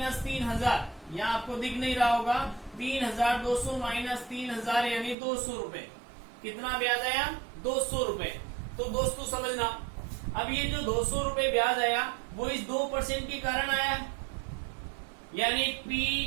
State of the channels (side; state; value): left; drops out; at 5.2 s